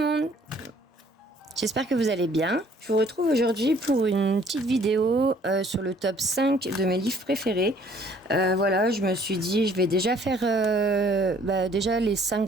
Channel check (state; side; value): normal; both; correlation 0.59